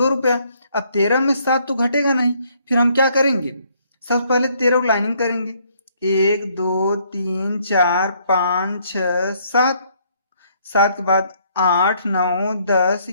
रुपया। अब 13 में 7 तो घटेगा नहीं, फिर हम क्या करेंगे, सबसे पहले 13 लाइनिंग करेंगे। 1 2 3 4 5 6 7, 7 के बाद 8 9 10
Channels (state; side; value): inverted; both; correlation -0.67